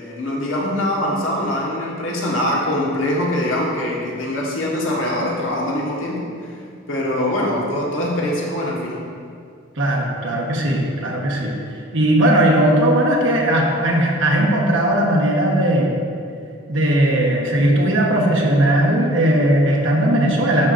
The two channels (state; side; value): normal; both; correlation 0.44